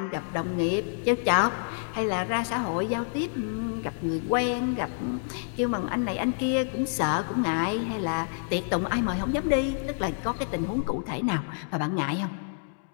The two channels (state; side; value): silent; right; digital silence